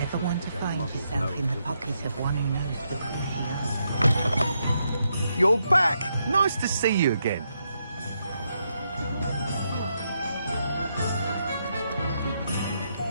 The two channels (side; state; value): both; inverted; correlation -0.80